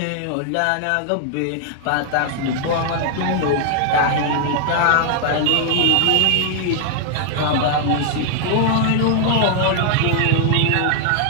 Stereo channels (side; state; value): both; different; correlation 0.00